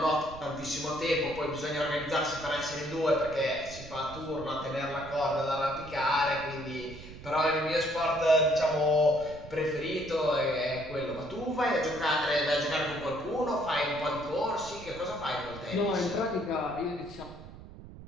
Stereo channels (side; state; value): right; noise; rumble, 15 dB below the sound